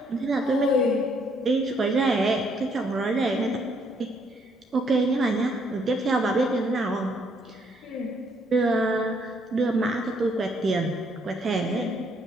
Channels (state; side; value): normal; both; correlation 0.69